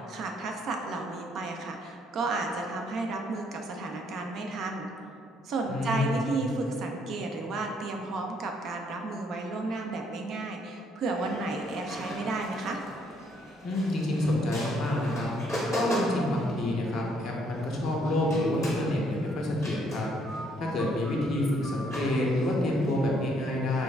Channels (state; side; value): normal; both; correlation 0.69